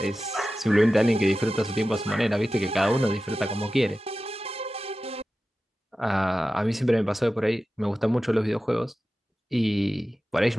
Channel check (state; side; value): normal; both; correlation 0.94